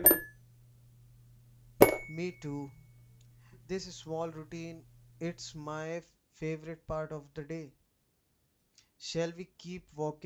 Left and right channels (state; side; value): identical; both; correlation 1.00